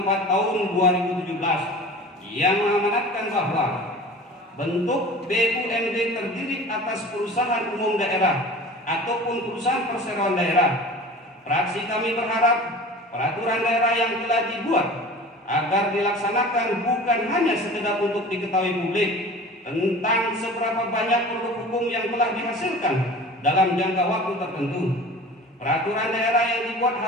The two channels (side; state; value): both; normal; correlation 0.40